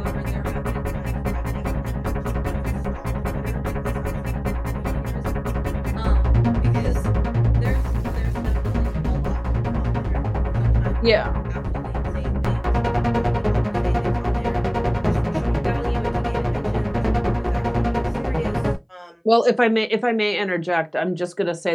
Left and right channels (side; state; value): both; identical; correlation 1.00